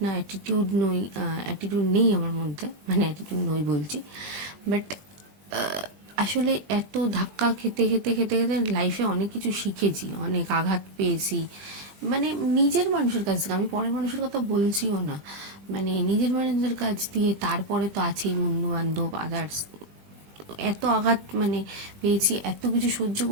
না, অ্যাটিটিউড নেই আমার মধ্যে, মানে অ্যাটিটিউড নই বলছি। বাট আসলে এত ধাক্কা খেতে খেতে খেতে খেতে লাইফে অনেক কিছু শিখেছি, অনেক আঘাত পেয়েছি। মানে নিজের মানুষের কাছ থেকে, আমি পরের মানুষের কথা বলছিও না, মানে নিজের মানুষের কাছ দিয়ে। তারপরে তো আছেই বন্ধু বান্ধব, আদার্স। এত আঘাত মানে পেয়েছি, এত কিছু সহ্য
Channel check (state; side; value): late; left; 21 ms